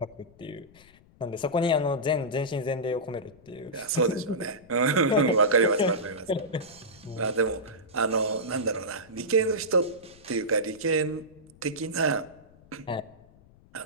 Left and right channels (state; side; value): noise; left; rumble, 26 dB below the sound